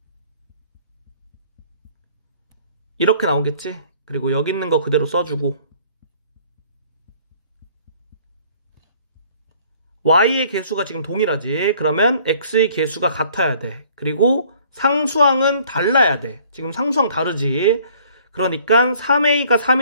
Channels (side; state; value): both; inverted; correlation -0.57